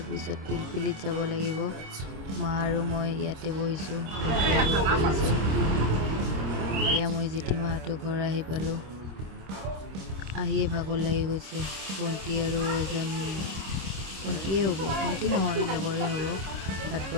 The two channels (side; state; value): left; late; 26 ms